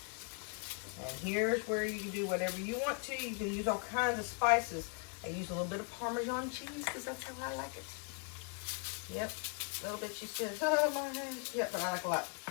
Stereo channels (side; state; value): right; quieter; 38.1 dB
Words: And here's where you can do whatever you want to. You can use all kinds of spices. I use a little bit of Parmesan cheese because that's how I like it. Yep. A little bit, she says, oh my goodness. Yep, but I like a lot.